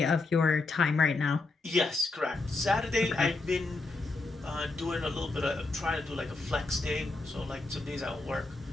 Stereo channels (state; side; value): quieter; right; 3.4 dB